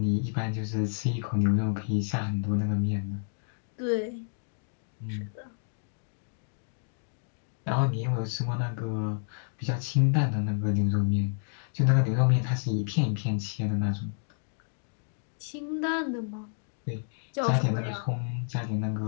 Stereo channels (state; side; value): silent; right; 58 dB below the other